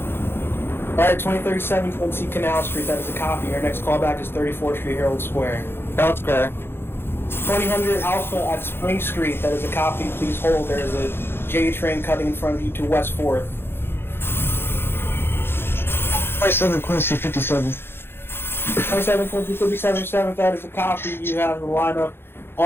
Alright, 2037 Quincy, Canal Street, that is a copy. Your next callback is 34th Street, Herald Square. Herald Square. 2000 Alpha at Spring Street, that is a copy. Please hold. There is a J train cutting in front of you to West 4th. 27 Quincy, 57. 27 Quincy 57 that is a copy. You have the lineup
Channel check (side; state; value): right; late; 0.11 ms